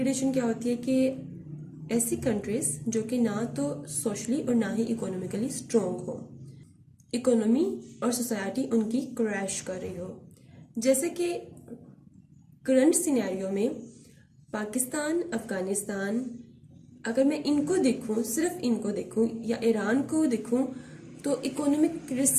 کیا ہوتی ہے کہ ایسی کنٹریز جو کہ نہ تو سوشلی اور نہ ہی اکنامیکلی اسٹرانگ ہو، اکنامی اور سوسائٹی ان کی کریش کر رہی ہو. جیسے کہ کرنٹ سینیریو میں پاکستان، افغانستان، اگر میں ان کو دیکھوں، صرف ان کو دیکھوں یا ایران کو دیکھوں، تو اکنامک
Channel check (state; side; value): identical; both; correlation 1.00